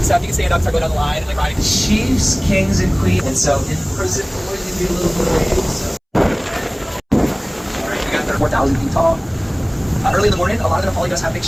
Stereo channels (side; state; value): both; identical; correlation 1.00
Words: stuff, you can stand up, start going down the line, and like riding. Chiefs, kings, and queens. And so in prison, we're going to do a little bit of waiting. So. Alright, we got 4,000 feet tall. Early in the morning, a lot of the Napali does have big